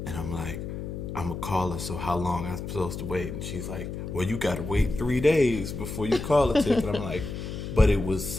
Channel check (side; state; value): left; noise; hum, 7 dB below the sound